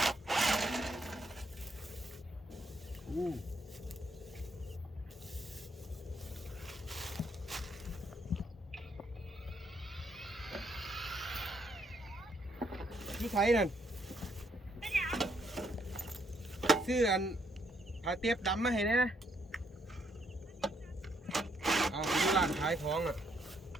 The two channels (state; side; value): normal; both; correlation 0.72